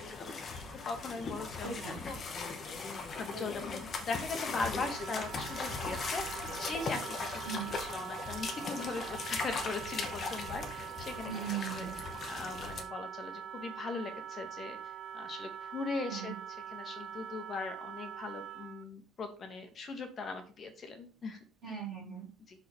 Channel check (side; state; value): both; normal; correlation 0.63